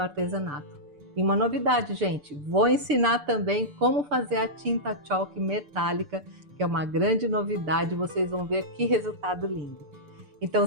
E uma novidade, gente, vou ensinar também como fazer a tinta chalk metálica, que é uma grande novidade, vocês vão ver que resultado lindo.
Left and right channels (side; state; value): left; late; 6.8 ms